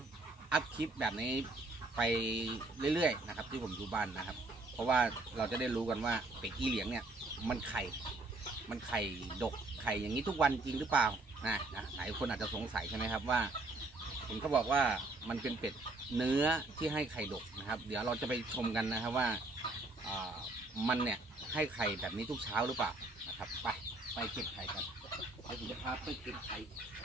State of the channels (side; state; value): left; quieter; 3.1 dB